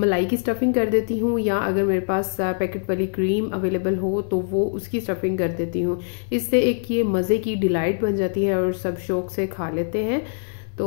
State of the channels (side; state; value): right; silent; 63 dB below the other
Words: की स्टफ़िंग कर देती हूँ, या अगर मेरे पास पैकेट वाली क्रीम अवेलेबल हो तो वो उसकी स्टफ़िंग कर देती हूँ। इससे एक ये मज़े की डिलाइट बन जाती है और सब शौक़ से खा लेते हैं।